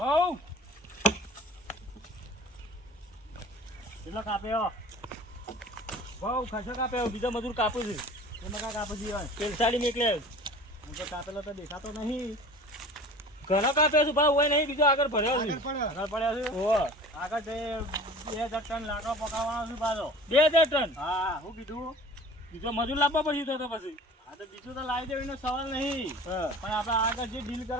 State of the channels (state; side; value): normal; both; correlation 0.42